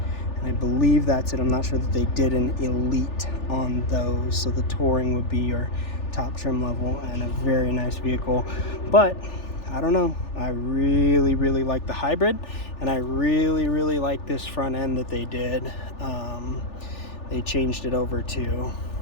and I believe that's it. I'm not sure that they did an Elite on those, so the Touring would be your top trim level and a very nice vehicle. But I don't know, I really like the hybrid, and I really like this front end that they did. They changed it over to,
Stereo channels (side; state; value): right; late; 3.4 ms